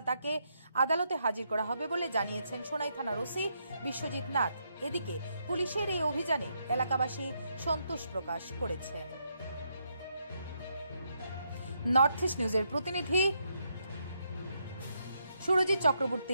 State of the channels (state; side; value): inverted; both; correlation -0.78